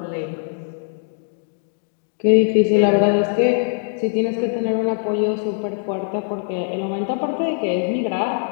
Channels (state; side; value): silent; right; digital silence